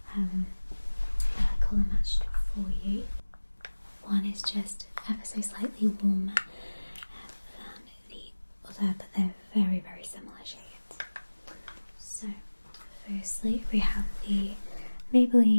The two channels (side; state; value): both; inverted; correlation -1.00